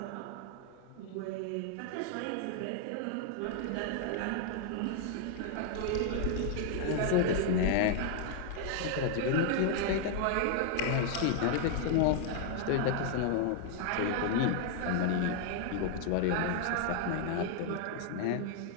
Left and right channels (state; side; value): different; both; correlation 0.00